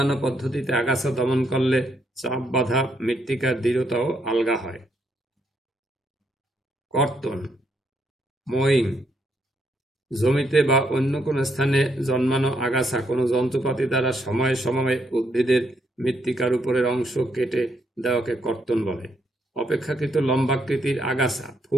পদ্ধতিতে আগাছা দমন করলে চাপ বাঁধা মৃত্তিকার দৃঢ়তাও আলগা হয়। কর্তন, মোয়িং। জমিতে বা অন্য কোনো স্থানে জন্মানো আগাছা কোনো যন্ত্রপাতি দ্বারা সময়ে সময়ে উদ্ভিদের মৃত্তিকার উপরের অংশ কেটে দেওয়াকে কর্তন বলে। অপেক্ষাকৃত লম্বাকৃতির আগাছা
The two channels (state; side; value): normal; both; correlation 0.75